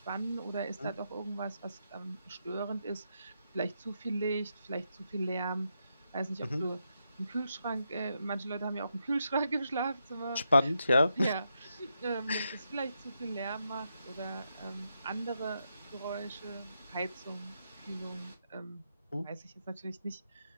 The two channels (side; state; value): both; inverted; correlation -0.82